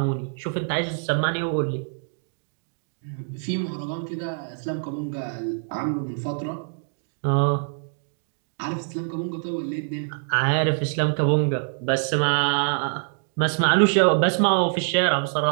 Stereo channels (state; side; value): silent; left; digital silence